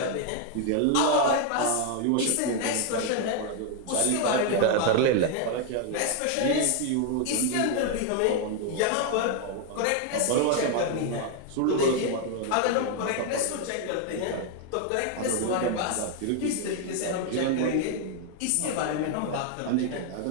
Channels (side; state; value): both; different; correlation 0.00